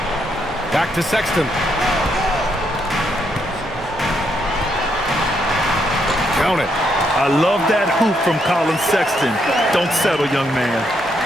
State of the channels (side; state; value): both; normal; correlation 0.76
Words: Back to Sexton. Count it. I love that hoop from Colin Sexton. Don't settle, young man.